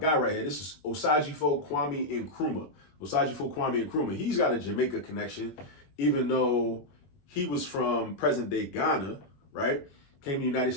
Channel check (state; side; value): late; right; 21 ms